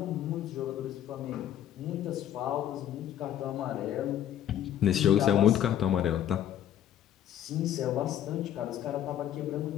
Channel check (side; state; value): right; quieter; 10.9 dB